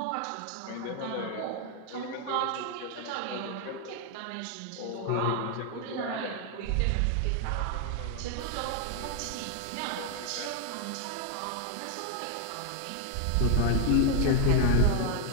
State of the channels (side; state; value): both; different; correlation 0.01